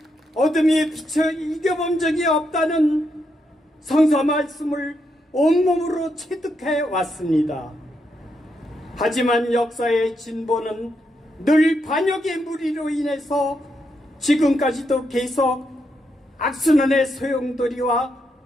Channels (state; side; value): normal; both; correlation 0.81